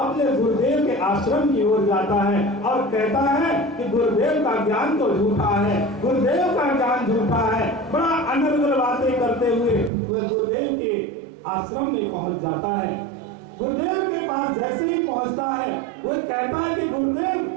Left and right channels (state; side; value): drops out; left; at 9.9 s